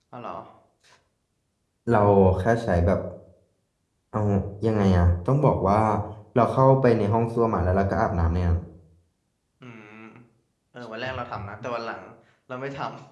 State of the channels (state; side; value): identical; both; correlation 1.00